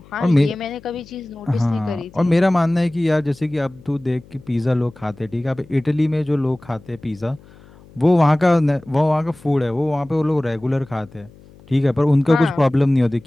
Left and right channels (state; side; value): noise; left; hum, 24 dB below the sound